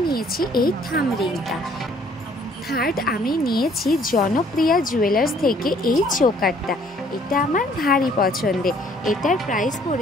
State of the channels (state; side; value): normal; both; correlation 0.60